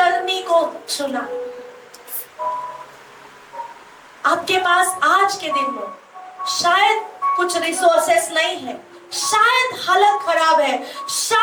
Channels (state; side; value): identical; both; correlation 1.00